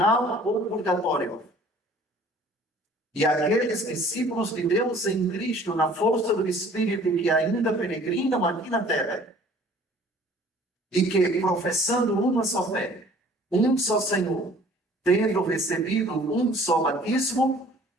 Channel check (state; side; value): normal; both; correlation 0.52